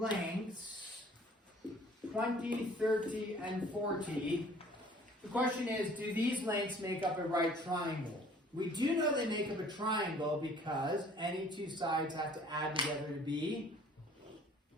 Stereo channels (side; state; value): both; normal; correlation 0.53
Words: 20, 30, and 40. The question is, do these lengths make up a right triangle? We do know they make up a triangle because any two sides have to add together to be